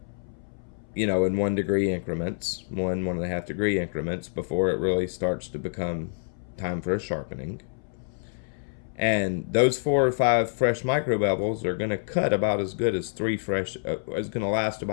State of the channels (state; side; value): silent; right; 60 dB below the other